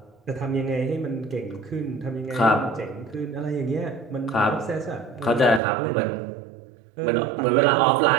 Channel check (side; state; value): left; drops out; at 5.6 s